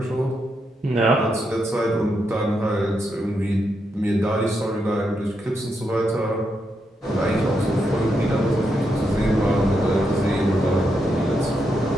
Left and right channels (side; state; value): both; normal; correlation 0.82